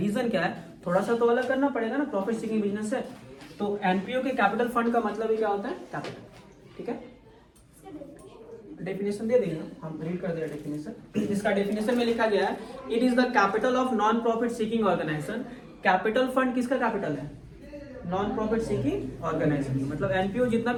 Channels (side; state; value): both; identical; correlation 1.00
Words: रीजन क्या है? थोड़ा सा तो अलग करना पड़ेगा ना, प्रॉफिट सीकिंग बिजनेस से। तो एनपीओ के कैपिटल फंड का मतलब ही क्या होता है? कैपिटल। ठीक है, डेफिनेशन दे देंगे, हम रीड कर दे डेफिनेशन। इसका डेफिनेशन में लिखा गया है, it is the capital of non profit seeking organisation. Capital fund किसका कैपिटल है? Non profit seeking organisation. मतलब एनपीओ जितना